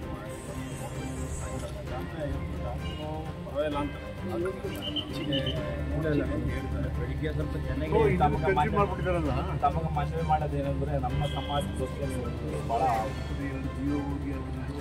ಸ್ವಲ್ಪ ಚೆನ್ನಾಗಿ ತಮಗೆ ಮನವಿ ಮಾಡೋದೇನೆಂದ್ರೆ ನಮ್ಮ ಸಮಾಜಕ್ಕೆ ಭಾಳ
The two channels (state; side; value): identical; both; correlation 1.00